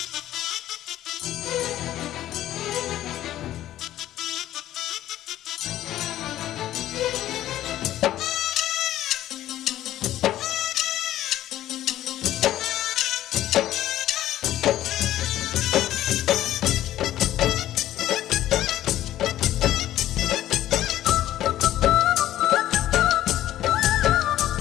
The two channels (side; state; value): right; quieter; 13.3 dB